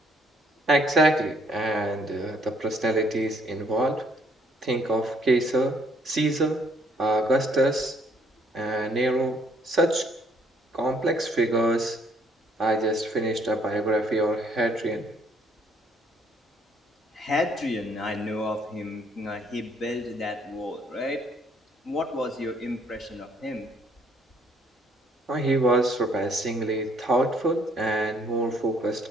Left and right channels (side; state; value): both; normal; correlation 0.65